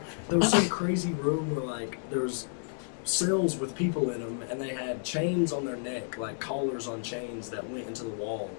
There was some crazy room where like there was cells with people in them, and they had chains on their neck, like collars on chains that went into the wall.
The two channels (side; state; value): right; silent; digital silence